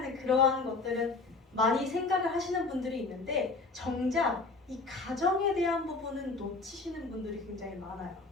그러한 것들은 많이 생각을 하시는 분들이 있는데, 정작 이 가정에 대한 부분은 놓치시는 분들이 굉장히 많아요.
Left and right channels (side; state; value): right; quieter; 3.7 dB